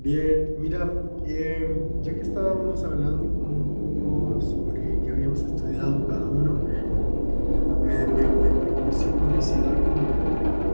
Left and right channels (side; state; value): both; inverted; correlation -1.00